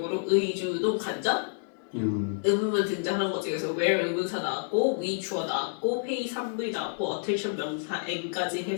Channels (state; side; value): silent; right; digital silence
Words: 의주동 간접 의문문 등장한 거지. 그래서 where 의문사 나왔고 we 주어 나왔고 pay 3V 나왔고 attention 명사 n까지